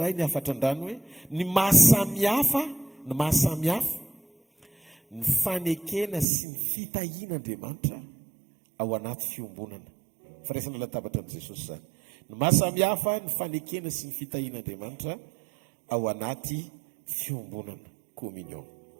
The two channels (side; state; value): left; drops out; at 6.2 s